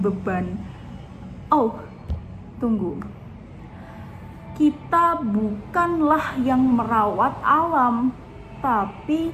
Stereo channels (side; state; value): both; identical; correlation 1.00